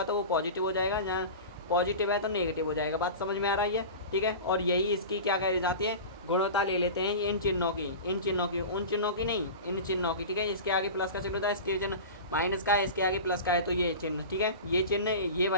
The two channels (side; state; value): both; inverted; correlation -0.31